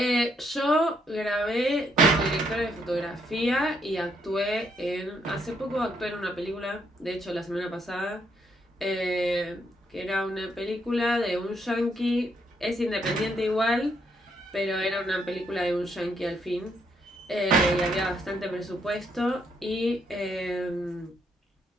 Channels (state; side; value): normal; both; correlation 0.74